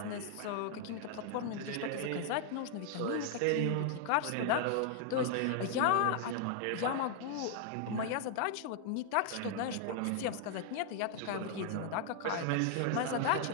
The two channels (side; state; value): both; different; correlation 0.00